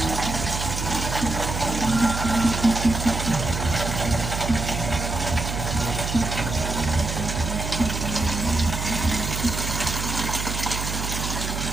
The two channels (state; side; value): noise; right; hum, 4 dB below the sound